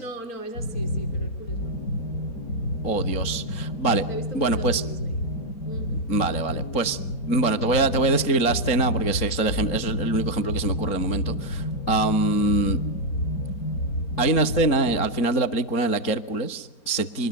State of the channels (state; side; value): late; right; 4.3 ms